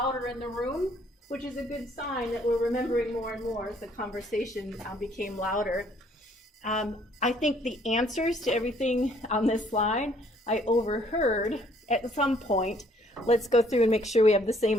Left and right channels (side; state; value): both; normal; correlation 0.63